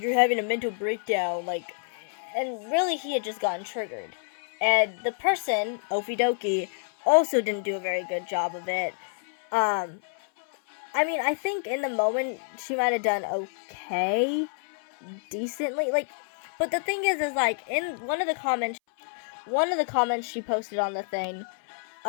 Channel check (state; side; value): silent; right; 59 dB below the other